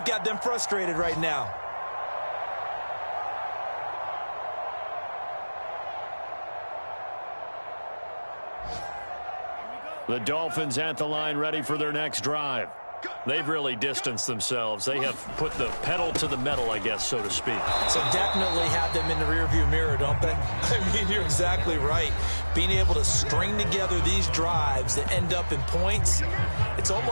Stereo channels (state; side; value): inverted; both; correlation -1.00